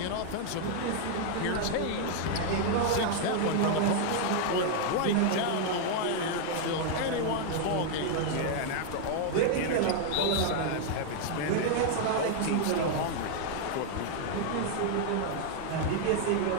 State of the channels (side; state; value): both; different; correlation 0.00